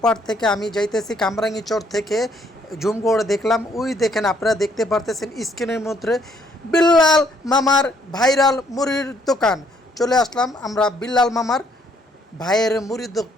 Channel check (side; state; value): both; normal; correlation 0.67